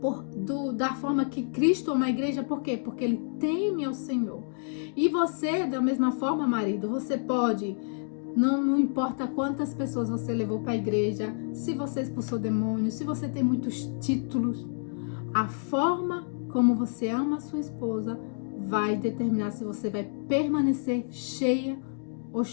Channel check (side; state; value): right; silent; digital silence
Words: da forma que Cristo ama a igreja. Por quê? Porque ele teme ao Senhor. E você, da mesma forma, marido, você pode, não importa quantas pessoas você levou para a igreja, se você expulsou demônios, se você tem muitos títulos, a forma como você ama a sua esposa vai determinar se você vai permanecer cheio